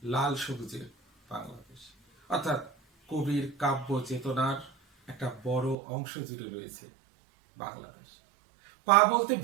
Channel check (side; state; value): left; drops out; at 5.8 s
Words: লাল সবুজের বাংলাদেশ। অর্থাৎ কবির কাব্য চেতনার একটা বড় অংশ জুড়ে রয়েছে বাংলাদেশ। পা বলতে